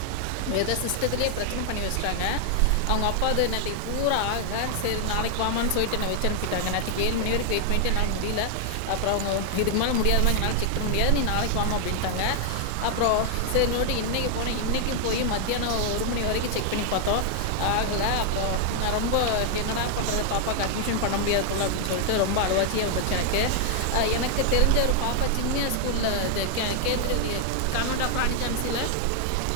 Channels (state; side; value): different; both; correlation 0.00